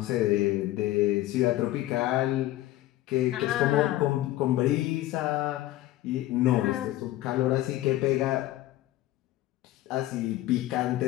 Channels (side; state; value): right; quieter; 15.6 dB